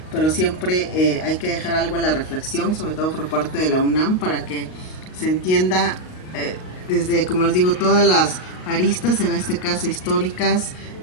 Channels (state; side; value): late; right; 38 ms